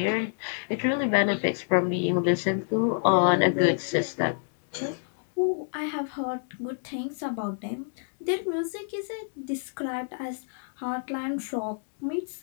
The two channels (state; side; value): silent; right; digital silence